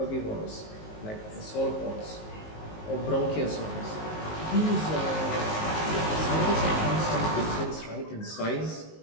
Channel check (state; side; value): late; right; 19 ms